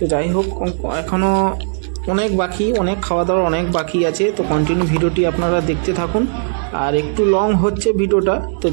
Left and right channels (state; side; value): silent; left; digital silence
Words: যাই হোক, এখনও অনেক বাকি, অনেক খাওয়া দাওয়ার অনেক বাকি আছে। তো কন্টিনিউ ভিডিওটি আপনারা দেখতে থাকুন। আর একটু লং হচ্ছে ভিডিওটা, তো